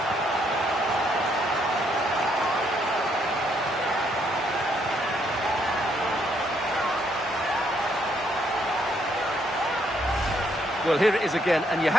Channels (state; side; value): normal; both; correlation 0.72